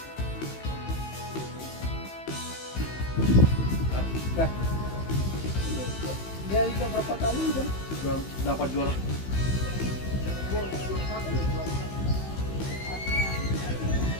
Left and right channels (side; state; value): right; late; 15 ms